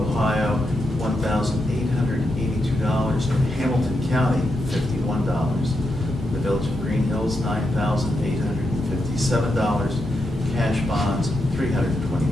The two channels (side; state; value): both; normal; correlation 0.84